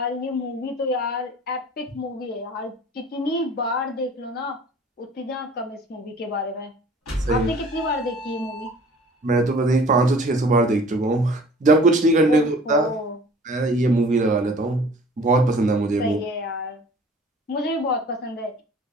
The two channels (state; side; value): normal; both; correlation 0.48